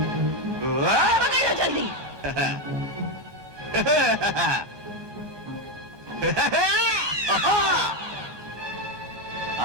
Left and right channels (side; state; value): left; late; 1.2 ms